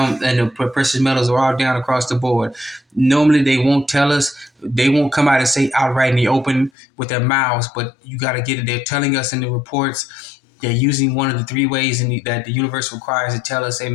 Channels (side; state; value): right; drops out; at 6.7 s